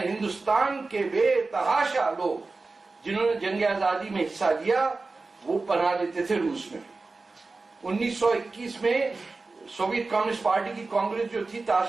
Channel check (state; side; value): quieter; left; 3.7 dB